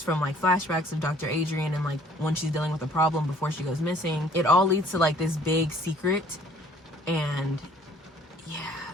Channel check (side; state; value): both; normal; correlation 0.57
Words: from like flashbacks of Dr. Adrian and like when she's dealing with a problem before she goes missing. It all leads to like this big secret, and yeah,